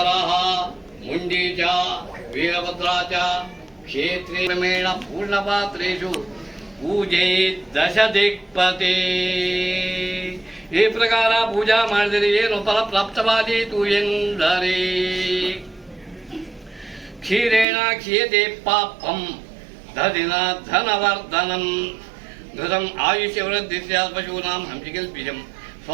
ಮುಂಡೀಚ, ವೀರಭದ್ರಾಚ, ಕ್ಷೇತ್ರೇ ಕ್ರಮೇಣ ಪೂರ್ಣಪಾತ್ರೇಷು ಪೂಜೆ ದಶ ದಿಕ್ಪತಿ. ಈ ಪ್ರಕಾರ ಪೂಜಾ ಮಾಡಿದರೆ ಏನು ಫಲ ಪ್ರಾಪ್ತವಾದೀತು ಎಂದರೆ ಕ್ಷೀರೇಣ ಕ್ಷೀಯತೆ ಪಾಪಂ ದಧಿನ ಧನವರ್ಧನಂ ಘೃತಂ ಆಯುಷ್ಯವೃದ್ಧಿ ಸ್ಯಾತ್ ಪಶೂನಾಂ ಹಂಸಿಕಲ್ಪಿಜಂ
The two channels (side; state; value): left; drops out; at 17.7 s